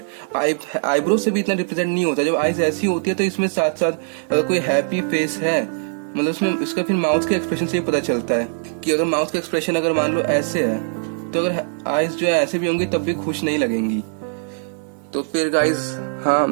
आईब्रोज से भी इतना रिप्रेजेंट नहीं होता, जब आईज ऐसी होती है तो इसमें साथ साथ अगर कोई हैप्पी फेस है, मतलब उसमें इसका फिर माउथ के एक्सप्रेशन से ही पता चलता है कि अगर माउथ का एक्सप्रेशन अगर मान लो ऐसे है, तो अगर आईज जो है ऐसे भी होंगी तब भी खुश नहीं लगेंगी। तो फिर गाइज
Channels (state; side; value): silent; left; 65 dB below the other